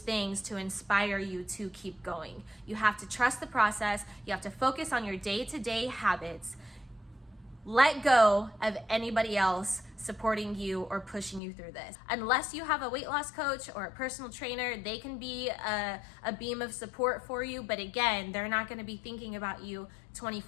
to inspire you to keep going. You have to trust the process. You have to focus on your day-to-day habits. Let go of anybody else supporting you or pushing you through this. Unless you have a weight loss coach or a personal trainer, they can be a beam of support for you, but again, they're not gonna be thinking about you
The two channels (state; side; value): drops out; right; at 11.4 s